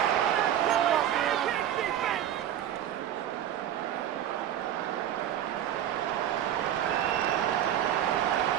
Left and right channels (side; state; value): left; quieter; 11.0 dB